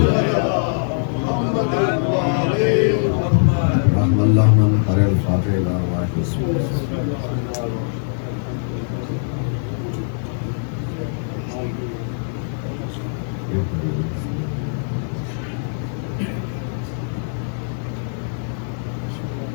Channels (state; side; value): silent; right; 65 dB below the other